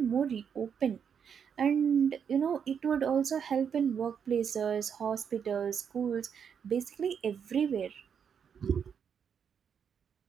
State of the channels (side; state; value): left; quieter; 7.4 dB